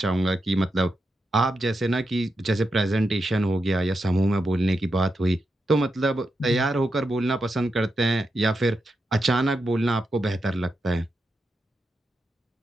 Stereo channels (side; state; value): both; normal; correlation 0.86